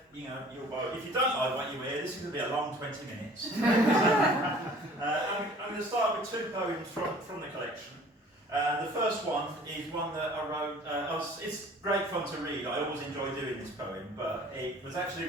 you'll buy it. If you don't like what you hear, this is going to be a long 20 minutes. I'm going to start with two poems from the collection. The first one is one that I wrote, it's great fun to read, I always enjoy doing this poem, but it was actually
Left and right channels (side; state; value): both; normal; correlation 0.49